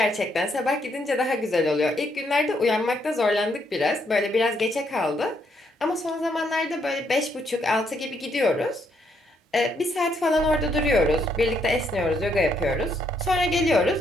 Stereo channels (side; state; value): both; normal; correlation 0.74